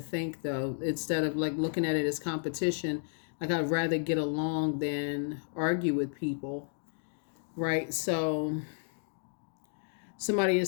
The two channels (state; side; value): silent; right; digital silence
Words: though. Instead of like looking at it as competition, like I'd rather get along than argue with people. Right? So somebody is